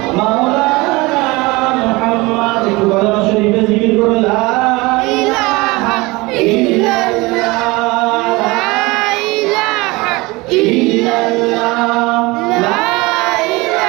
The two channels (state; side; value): quieter; left; 23.0 dB